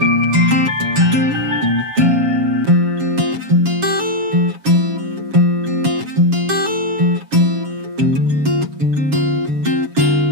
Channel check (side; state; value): left; late; 7.2 ms